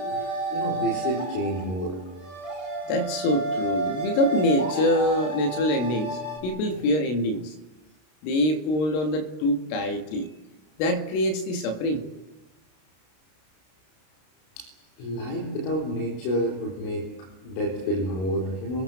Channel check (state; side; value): late; right; 32 ms